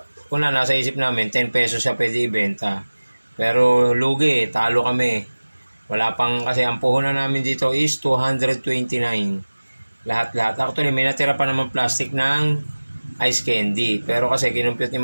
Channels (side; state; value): both; inverted; correlation -1.00